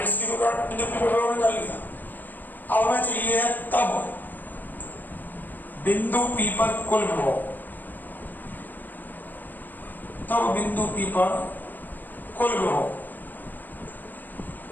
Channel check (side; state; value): right; late; 0.087 ms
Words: क्यू के कारण बिंदु पी पर विभव निकाल लिया। अब हमें चाहिए तब बिंदु पी पर कुल विभव। तब बिंदु पी पर कुल विभव